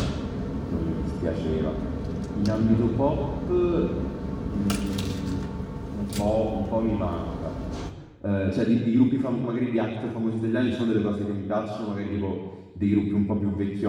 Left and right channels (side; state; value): both; identical; correlation 1.00